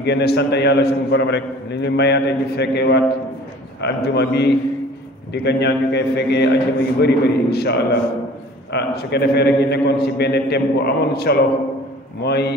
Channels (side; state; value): both; normal; correlation 0.47